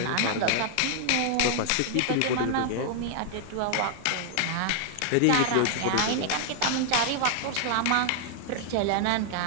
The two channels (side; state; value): both; different; correlation 0.00